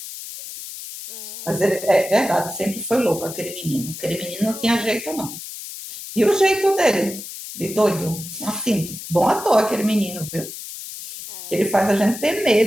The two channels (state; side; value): noise; left; hiss, 11 dB below the sound